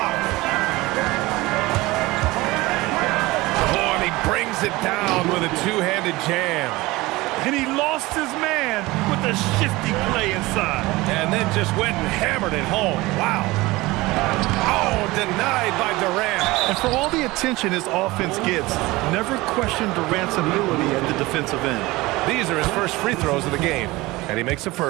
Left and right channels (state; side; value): quieter; left; 20.6 dB